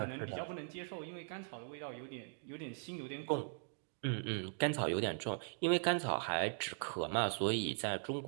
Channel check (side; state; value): left; silent; digital silence